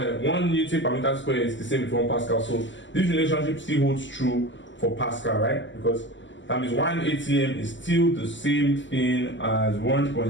1 Newton per meter square is the same with 1 Pascal. So this relationship still holds true for Pascal, right? Because that means 1 atm is still the same thing as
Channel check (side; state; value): right; late; 0.54 ms